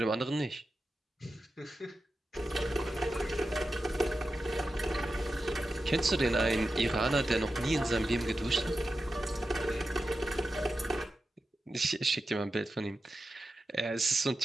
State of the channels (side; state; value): both; normal; correlation 0.91